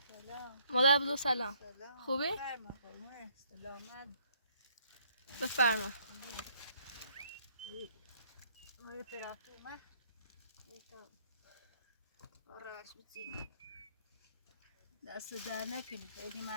سلام. مادر بزرگ سلام. سلام. خوبی؟ سلامت. بفرما. آره طرف اومد. آرش بچینی. دست در نکنی. خیلی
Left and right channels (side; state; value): both; inverted; correlation -0.65